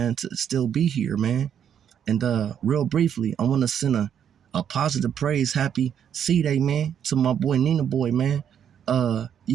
to still be here, man. And real briefly, I want to send a positive praise, happy C-Day, man, to my boy Nina Boy, man.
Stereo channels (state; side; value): quieter; left; 8.8 dB